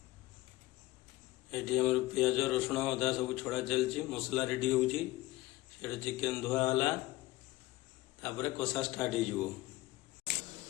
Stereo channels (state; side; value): quieter; right; 18.8 dB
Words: ये आम पियाज रसुण अदा सब छड़ा चलती मसला रेडी हो चिकेन धुआला तापर कषा स्टार्ट हो